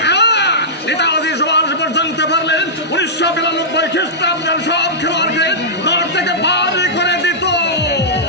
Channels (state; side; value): normal; both; correlation -0.14